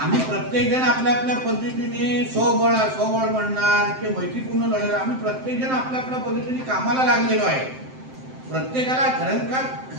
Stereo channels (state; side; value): late; left; 7.7 ms